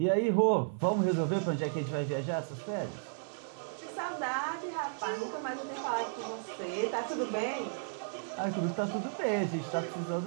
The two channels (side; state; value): left; silent; digital silence